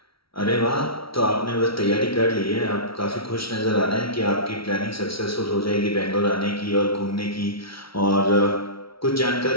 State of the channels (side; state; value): right; late; 0.75 ms